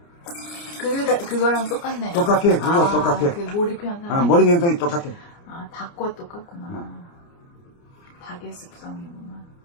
그거랑 똑같네요. 똑같아, 그거 똑같아. 그 몰입현상. 머리 현상이 똑같아. 닭과 똑같구나. 닭의 습성이구나.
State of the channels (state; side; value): late; right; 29 ms